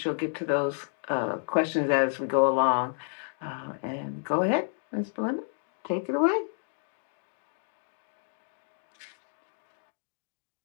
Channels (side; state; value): right; silent; digital silence